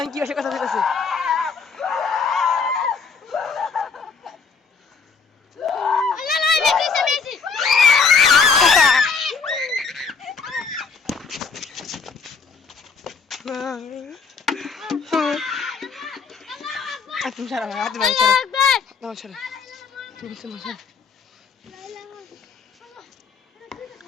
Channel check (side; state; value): right; quieter; 5.2 dB